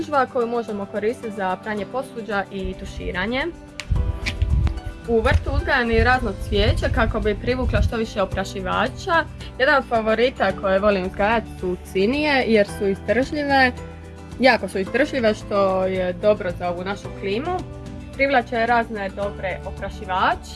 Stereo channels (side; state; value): both; identical; correlation 1.00